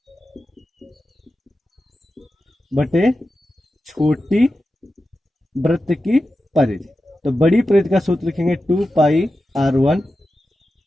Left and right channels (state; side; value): normal; both; correlation 0.92